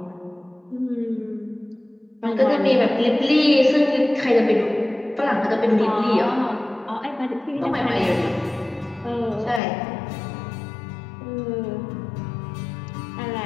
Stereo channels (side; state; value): right; drops out; at 9.6 s